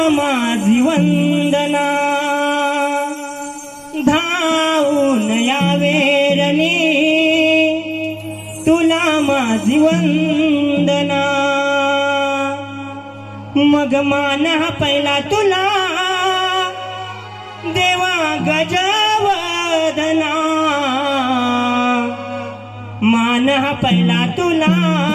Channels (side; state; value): both; identical; correlation 1.00